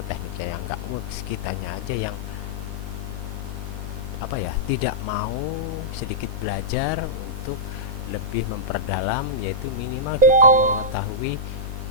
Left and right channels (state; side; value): late; left; 4.2 ms